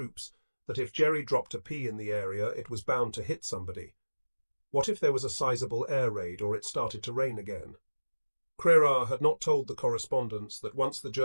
that if Jerry dropped a pea in the area, it was bound to hit somebody. What if there was a sizable air raid or it started to rain again? Crerar had not told the correspondents that once the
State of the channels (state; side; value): inverted; both; correlation -1.00